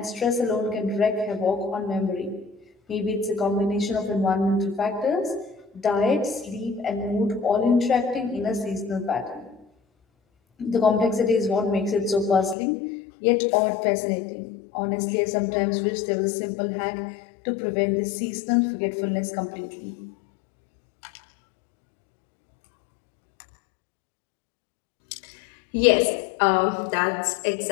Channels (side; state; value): right; drops out; at 12.6 s